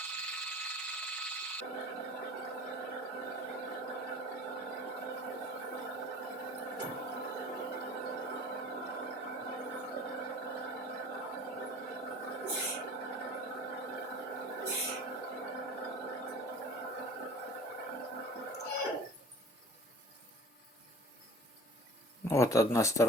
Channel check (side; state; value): both; normal; correlation 0.44